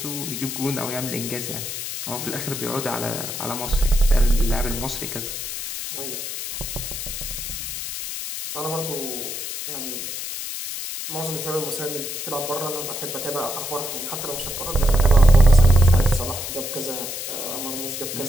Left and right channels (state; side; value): noise; left; hiss, 6 dB below the sound